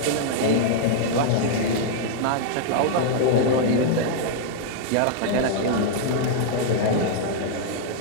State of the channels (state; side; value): different; both; correlation -0.01